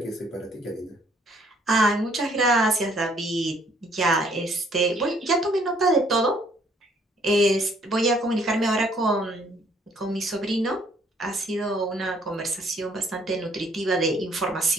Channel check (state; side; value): normal; both; correlation 0.63